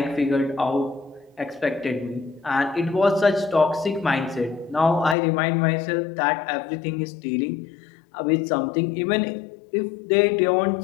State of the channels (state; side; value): drops out; right; at 5.2 s